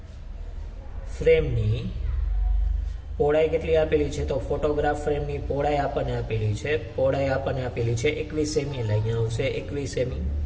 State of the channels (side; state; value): both; identical; correlation 1.00